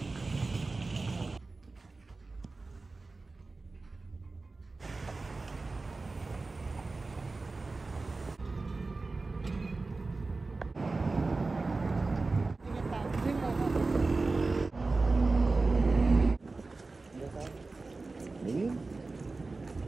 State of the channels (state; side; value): quieter; left; 3.6 dB